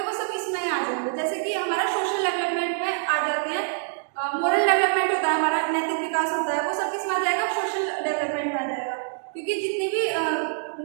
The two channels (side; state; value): left; silent; digital silence